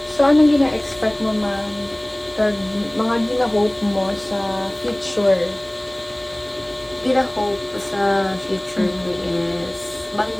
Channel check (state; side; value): noise; right; hiss, 30 dB below the sound